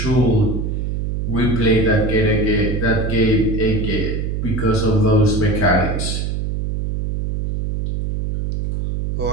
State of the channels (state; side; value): noise; right; hum, 2 dB below the sound